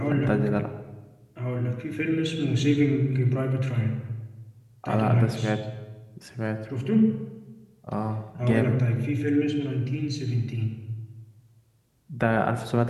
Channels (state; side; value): identical; both; correlation 1.00